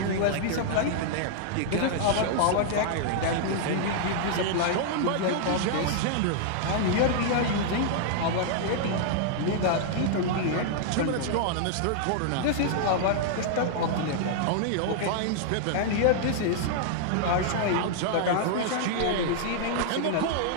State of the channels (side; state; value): both; different; correlation -0.01